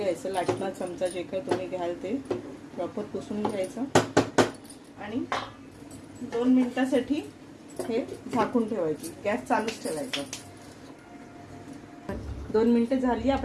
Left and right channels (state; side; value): identical; both; correlation 1.00